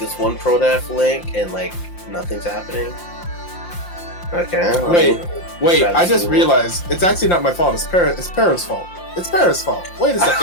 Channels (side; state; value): right; late; 5.7 ms